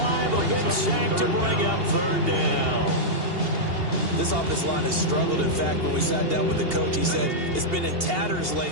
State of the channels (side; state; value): left; late; 2.8 ms